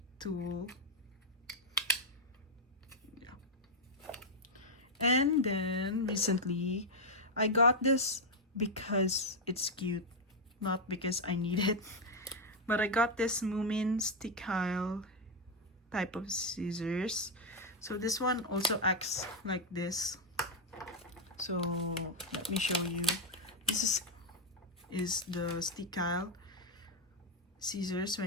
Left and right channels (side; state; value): both; normal; correlation 0.01